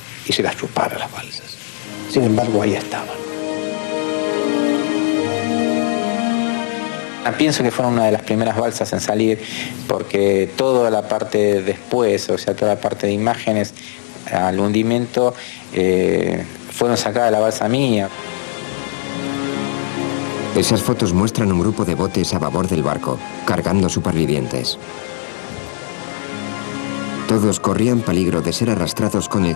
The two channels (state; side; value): silent; right; digital silence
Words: y se las chupara las balsas. Sin embargo, ahí estaban. Pienso que fueron una de las primeras balsas en salir, porque toda la parte después, o sea, toda la parte de imágenes al hundimiento, fueron sacadas de la balsa mía. Esas fotos muestran un grupo de botes a babor del barco, cargando supervivientes. Todos corrían peligro de ser arrastrados con el